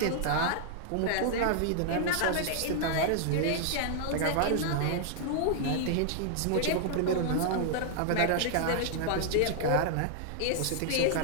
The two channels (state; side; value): different; both; correlation -0.01